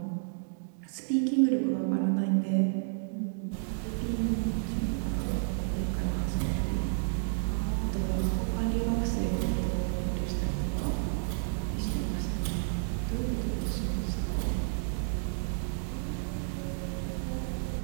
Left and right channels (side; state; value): left; silent; digital silence